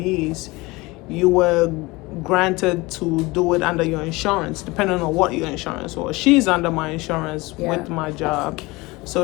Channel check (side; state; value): right; quieter; 22.6 dB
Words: you were granted to do it under your insurance, depending on what your insurance was. She's under my insurance with my job, so